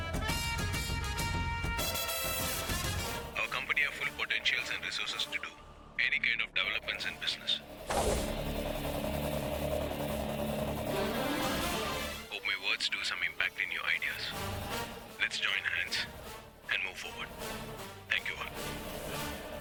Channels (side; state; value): both; identical; correlation 1.00